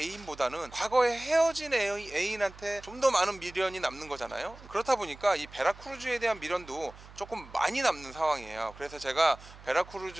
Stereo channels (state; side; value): noise; right; hum, 19 dB below the sound